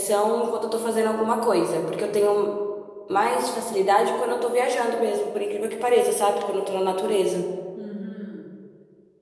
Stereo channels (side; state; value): both; identical; correlation 1.00